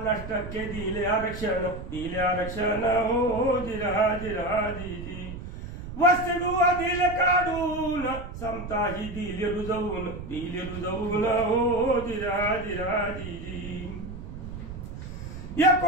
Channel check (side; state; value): right; noise; rumble, 10 dB below the sound